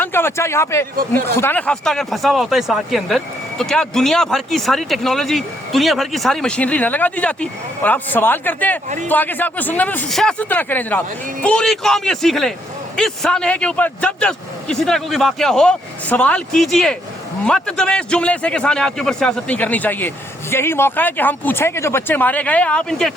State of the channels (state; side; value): normal; both; correlation 0.72